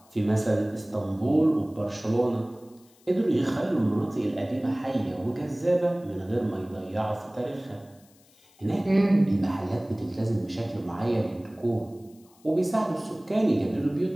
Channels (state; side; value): noise; left; hiss, 30 dB below the sound